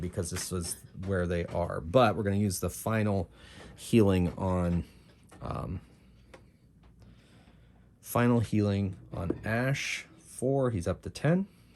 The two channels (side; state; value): both; identical; correlation 1.00